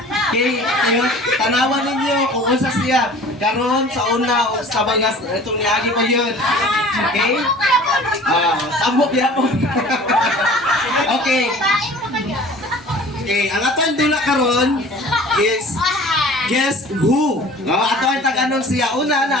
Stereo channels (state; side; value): normal; both; correlation 0.45